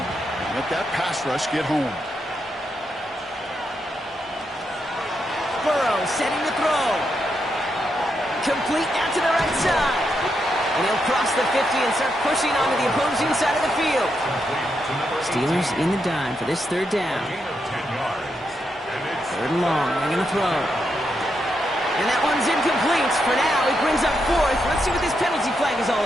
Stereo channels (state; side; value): normal; both; correlation 0.82